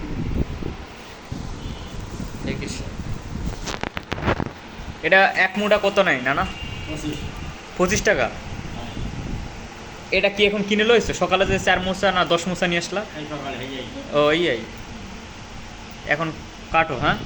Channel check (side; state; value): both; identical; correlation 1.00